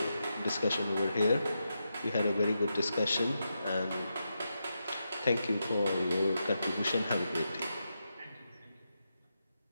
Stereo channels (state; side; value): inverted; both; correlation -0.86